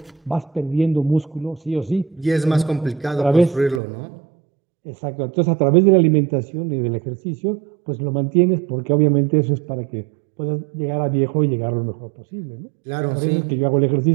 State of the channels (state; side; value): drops out; left; at 3.8 s